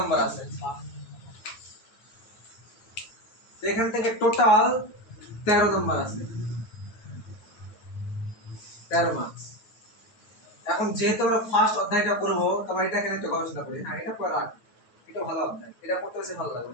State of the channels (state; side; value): late; right; 9.5 ms